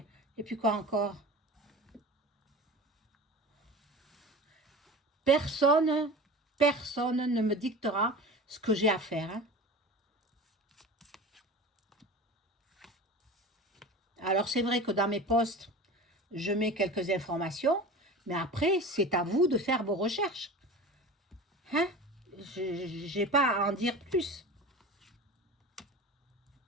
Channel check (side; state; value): both; normal; correlation 0.34